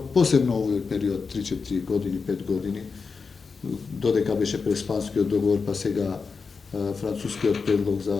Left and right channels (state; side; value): quieter; right; 5.0 dB